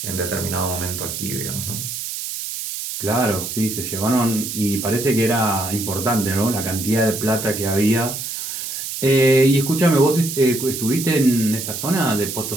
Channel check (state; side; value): noise; right; hiss, 6 dB below the sound